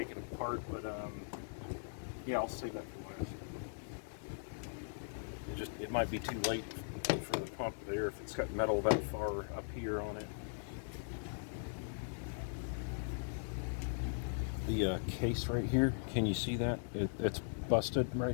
it apart, but yeah, I'll save that for last. It might be too late for the pump there if it's got metal that far up here on it. The case right here, can you see that? It's busted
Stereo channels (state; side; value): silent; right; 51 dB below the other